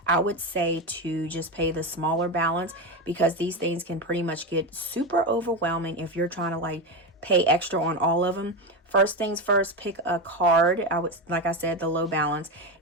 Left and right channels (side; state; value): both; normal; correlation 0.15